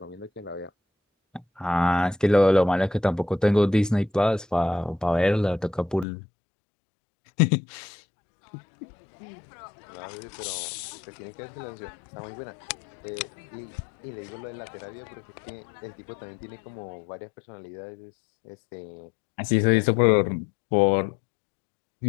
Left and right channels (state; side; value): drops out; right; at 6.1 s